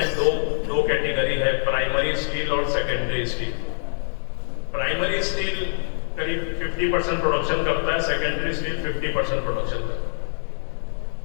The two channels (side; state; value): right; silent; digital silence